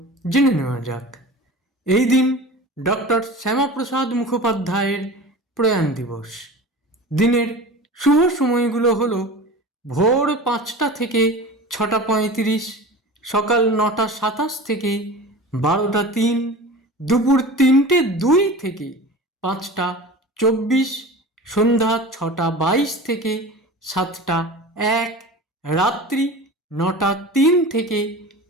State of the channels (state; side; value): normal; both; correlation 0.35